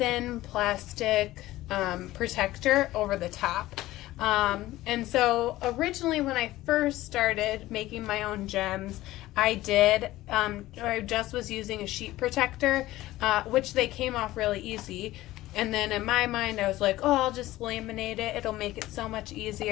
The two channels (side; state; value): right; quieter; 16.5 dB